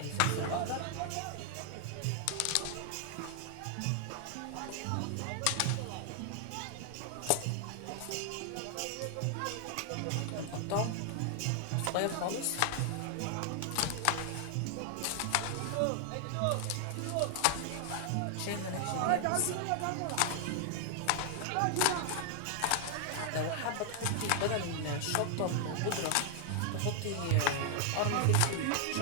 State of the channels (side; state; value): both; different; correlation 0.00